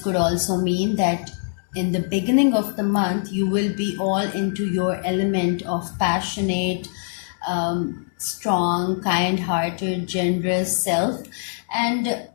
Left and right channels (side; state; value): right; silent; digital silence